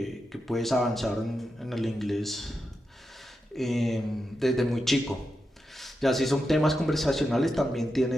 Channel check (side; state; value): both; normal; correlation 0.88